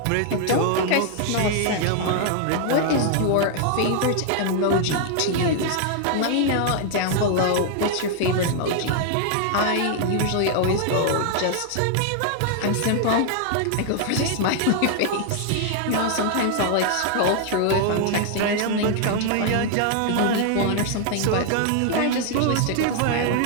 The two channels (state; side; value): different; both; correlation 0.00